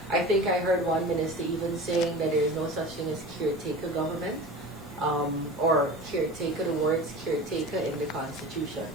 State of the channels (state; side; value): normal; both; correlation 0.34